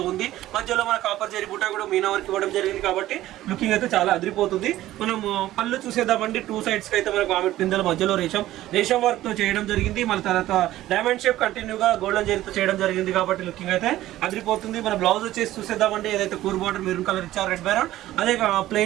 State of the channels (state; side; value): quieter; left; 14.8 dB